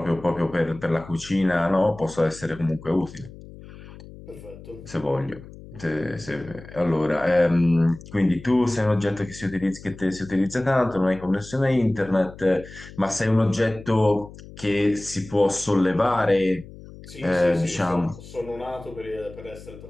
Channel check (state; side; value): noise; left; hum, 17 dB below the sound